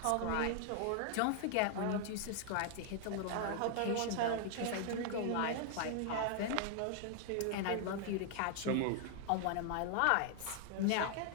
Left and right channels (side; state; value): both; different; correlation 0.00